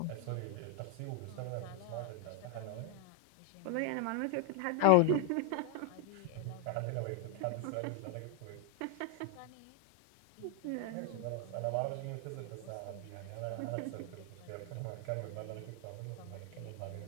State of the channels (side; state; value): both; different; correlation 0.00